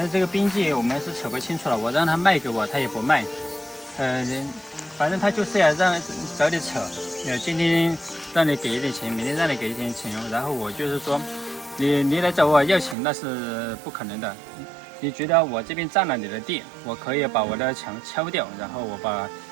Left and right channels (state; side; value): drops out; left; at 13.0 s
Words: 这个边界我们是扯不清楚了，我让他卖给我，他也不卖。反正他就是要找你扯，今天让你给一点钱，明天让你给一点钱，然后我就是说，你来找我要钱那是不可能的。你觉得我这边占了你的地，我可以把我的墙敲掉，然后我把